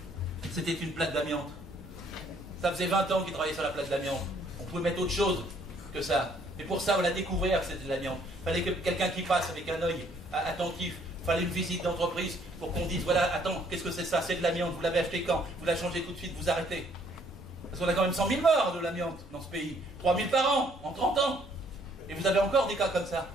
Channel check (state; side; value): normal; both; correlation 0.64